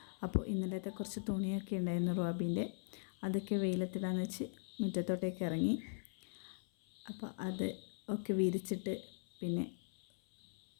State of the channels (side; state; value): right; silent; 51 dB below the other